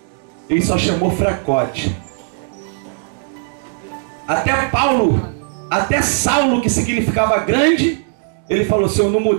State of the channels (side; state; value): left; silent; digital silence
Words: Ele só chamou fracote. Até Paulo, até Saulo, que significava grande, ele falou: se eu não